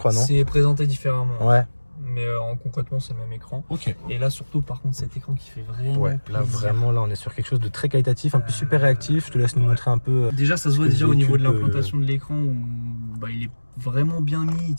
non? C'est présenté différemment. Ouais. Mais concrètement, c'est le même écran. Ok. Et là, surtout, par contre, cet écran qui fait vraiment. Ouais, là, vraiment, là, on est sur quelque chose de très qualitatif, un peu super réactif. Je te laisse nous montrer un peu. Déjà, ça se voit déjà au niveau de l'implantation de l'écran où il est vraiment bien mis, il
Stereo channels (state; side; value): inverted; both; correlation -1.00